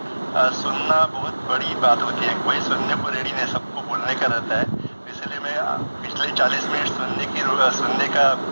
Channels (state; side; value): inverted; both; correlation -1.00